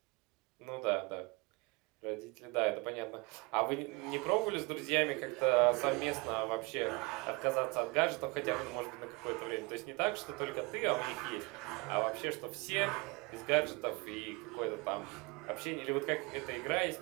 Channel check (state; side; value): quieter; left; 26.8 dB